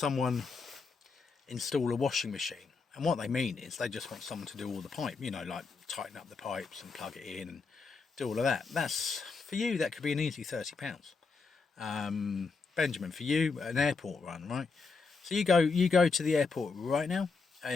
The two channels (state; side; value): quieter; right; 4.6 dB